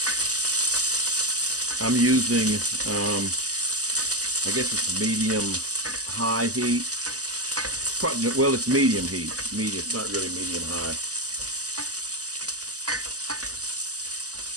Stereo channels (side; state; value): left; late; 0.67 ms